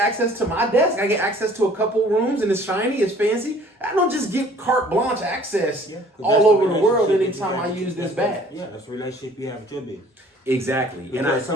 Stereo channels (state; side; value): normal; both; correlation 0.54